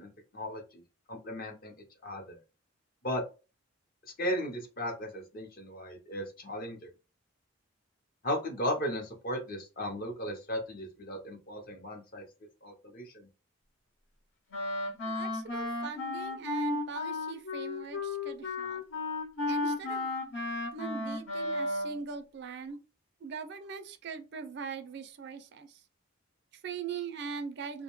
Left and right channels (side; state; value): both; normal; correlation 0.00